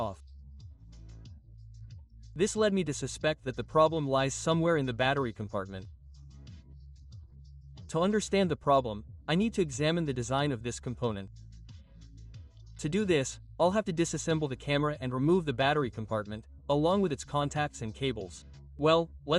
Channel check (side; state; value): both; identical; correlation 1.00